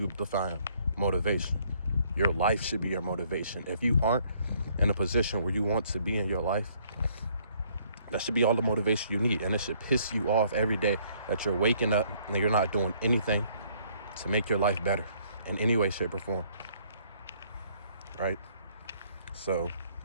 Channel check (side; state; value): both; inverted; correlation -0.64